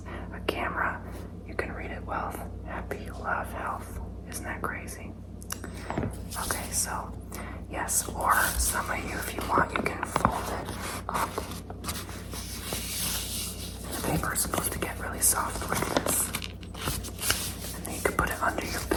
a camera, you can read it. Wealth, happy, love, health. Isn't that crazy? Okay, so yes, or some of you, if you want, you can fold it up. The paper is supposed to get really soft like this. And then you can put it under your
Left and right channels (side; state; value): both; identical; correlation 1.00